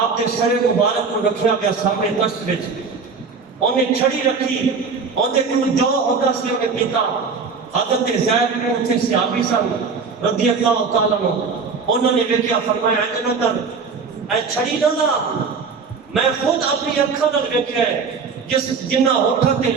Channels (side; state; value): left; quieter; 5.1 dB